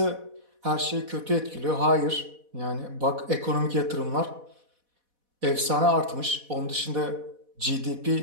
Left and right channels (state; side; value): late; left; 4.1 ms